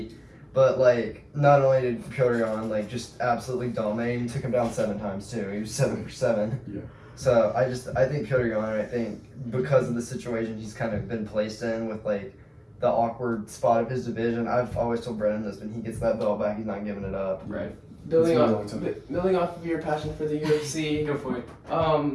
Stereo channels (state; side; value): identical; both; correlation 1.00